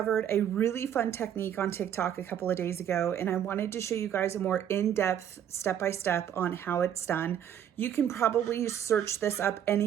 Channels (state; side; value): quieter; left; 9.6 dB